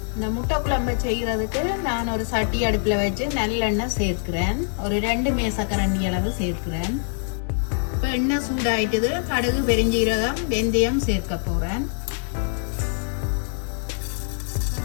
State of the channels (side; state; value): right; silent; 63 dB below the other